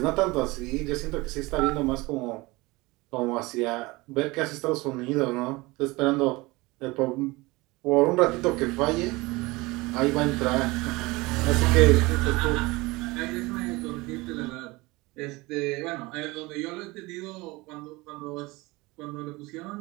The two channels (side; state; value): left; quieter; 22.6 dB